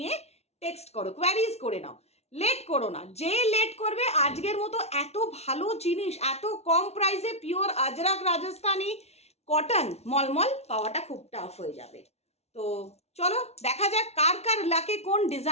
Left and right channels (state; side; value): late; right; 0.31 ms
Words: টেক্সট করো, কোয়ারিজ করে নাও, লেট করো না। যে লেট করবে, আজকের মতো এত ভালো জিনিস এত কম প্রাইসে পিওর আজরাক রাজস্থানি কটন মলমল পাওয়াটা খুব টাফ হয়ে যাবে। তো চলো দেখা যাক কার কার লাকে কোন